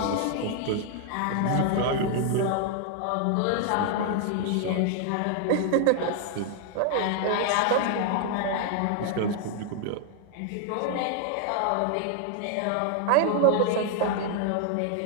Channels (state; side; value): different; both; correlation 0.00